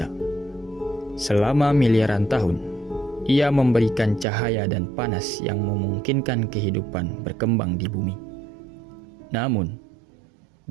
Selama miliaran tahun, ia memberikan cahaya dan panas yang memungkinkan kehidupan berkembang di bumi. Namun,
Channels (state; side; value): drops out; left; at 4.2 s